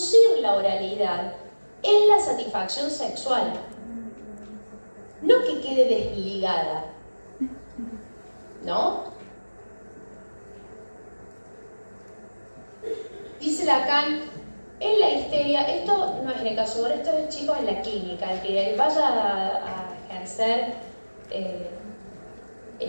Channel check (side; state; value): both; inverted; correlation -1.00